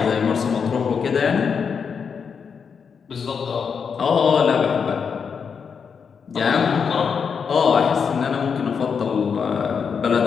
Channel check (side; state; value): right; quieter; 6.3 dB